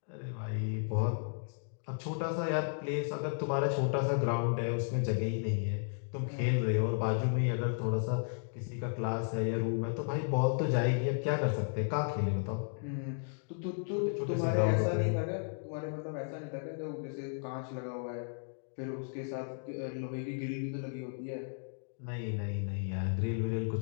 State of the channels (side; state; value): right; silent; digital silence